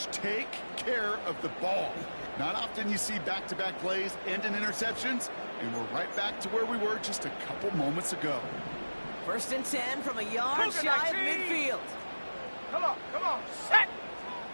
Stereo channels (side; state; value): both; inverted; correlation -1.00